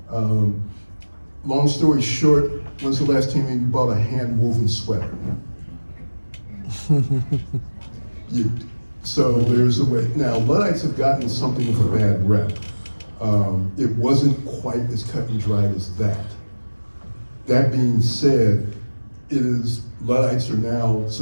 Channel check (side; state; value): both; inverted; correlation -1.00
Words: Long story short, when's the last time you bought a hand-woven sweater? So there's a way. Now, Luddites have gotten something of a bad rep. It wasn't quite as cut and dried as that. That being said, Luddites are now